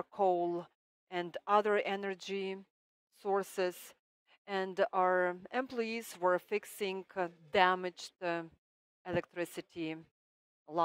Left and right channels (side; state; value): both; identical; correlation 1.00